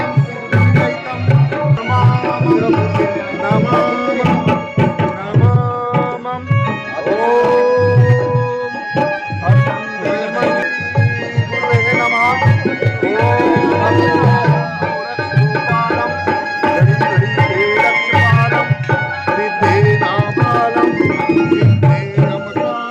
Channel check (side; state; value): both; identical; correlation 1.00